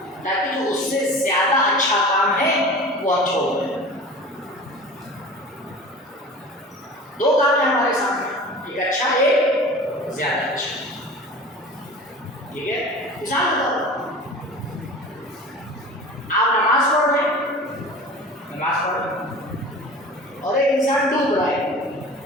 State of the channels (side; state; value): both; normal; correlation 0.37